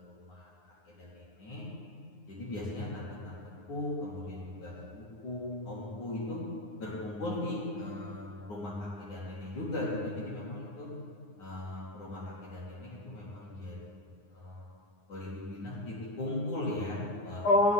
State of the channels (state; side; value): late; right; 9.7 ms